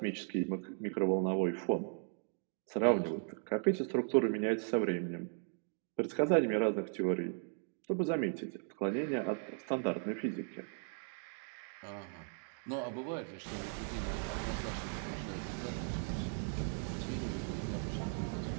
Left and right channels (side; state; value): left; silent; 53 dB below the other